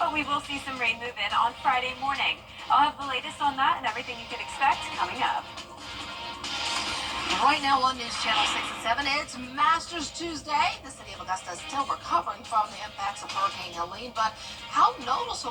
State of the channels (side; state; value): both; identical; correlation 1.00